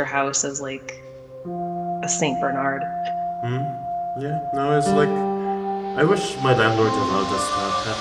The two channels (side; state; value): both; identical; correlation 1.00